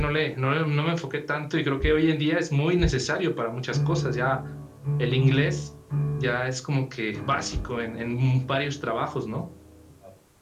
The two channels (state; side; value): identical; both; correlation 1.00